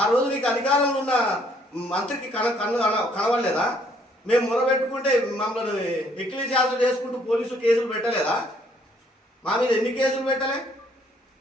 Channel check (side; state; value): both; normal; correlation 0.65